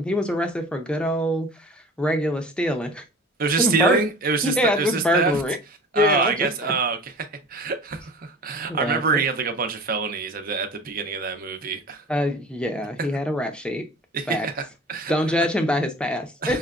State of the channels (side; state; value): both; normal; correlation 0.41